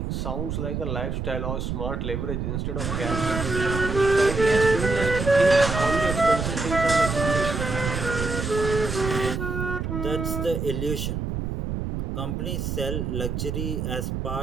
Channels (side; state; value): right; noise; rumble, 3 dB below the sound